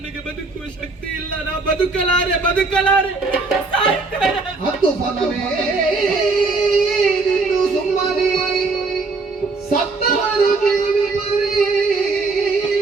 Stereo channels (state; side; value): quieter; left; 3.8 dB